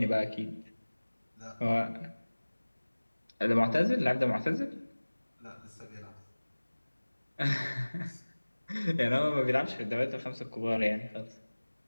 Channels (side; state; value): both; inverted; correlation -1.00